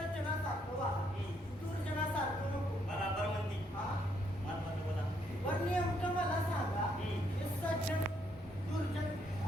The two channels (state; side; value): normal; both; correlation 0.73